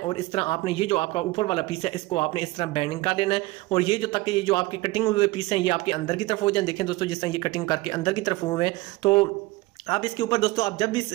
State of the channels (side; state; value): left; quieter; 20.3 dB